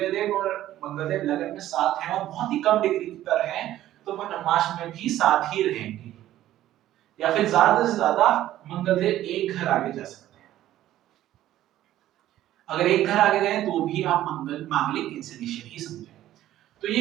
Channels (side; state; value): left; quieter; 13.5 dB